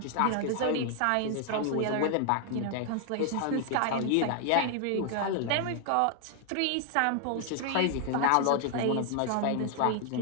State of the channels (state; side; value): different; both; correlation 0.00